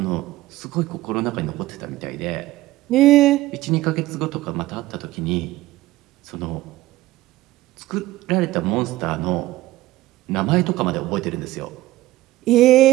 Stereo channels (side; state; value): left; quieter; 16.9 dB